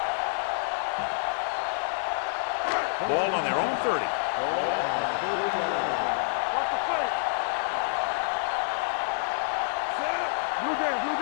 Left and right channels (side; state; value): right; silent; 59 dB below the other